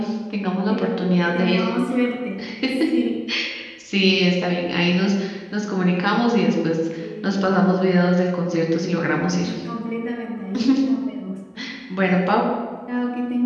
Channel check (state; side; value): identical; both; correlation 1.00